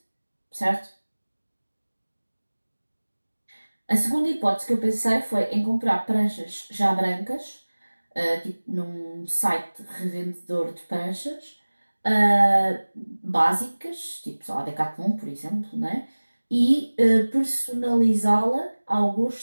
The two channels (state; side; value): inverted; both; correlation -1.00